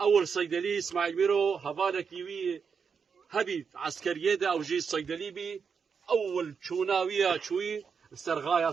صیدلی اسماعیل میرو هواله کیوی هبید عسکریه ده او جی صیدلی بی اول چوناویه چوی سرغایا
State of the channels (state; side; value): quieter; left; 6.1 dB